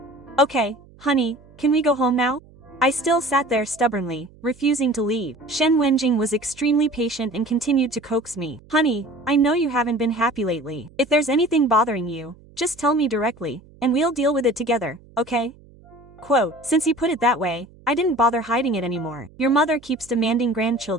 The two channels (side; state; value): right; noise; hum, 25 dB below the sound